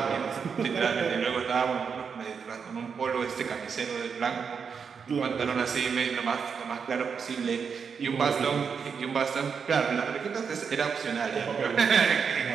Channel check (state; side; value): quieter; left; 6.2 dB